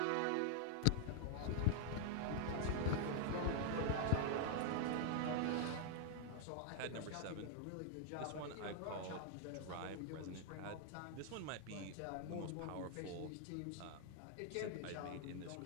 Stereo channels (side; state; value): both; different; correlation 0.00